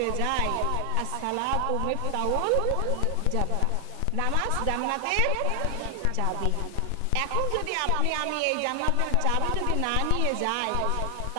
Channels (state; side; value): different; both; correlation 0.00